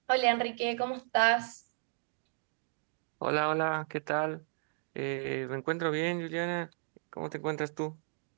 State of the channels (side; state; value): left; silent; 55 dB below the other